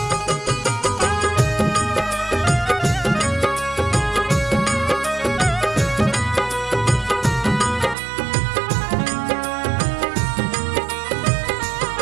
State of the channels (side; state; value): left; drops out; at 8.0 s